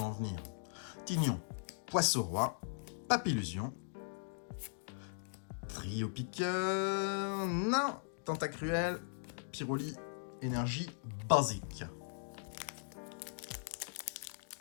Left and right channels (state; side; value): silent; right; digital silence